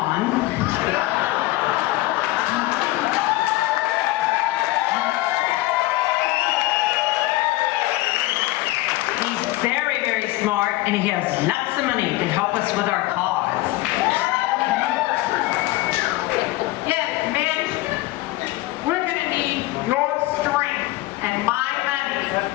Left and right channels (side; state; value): right; quieter; 18.4 dB